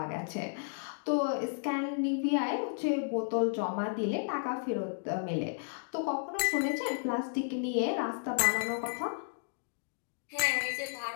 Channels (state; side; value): silent; right; digital silence